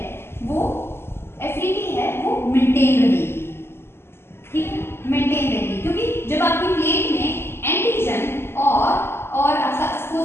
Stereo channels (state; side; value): late; right; 0.12 ms